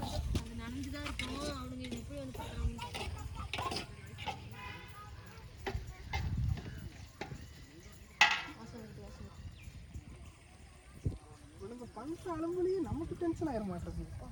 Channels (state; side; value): identical; both; correlation 1.00